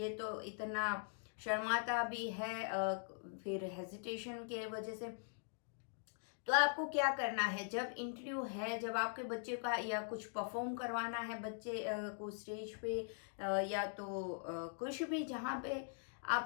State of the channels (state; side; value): silent; right; digital silence